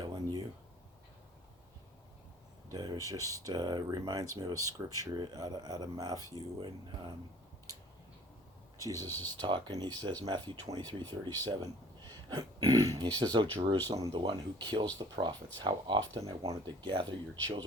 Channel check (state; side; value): normal; both; correlation 0.52